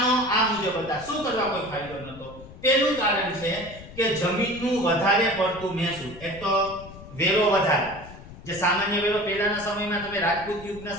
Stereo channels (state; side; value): noise; left; rumble, 17 dB below the sound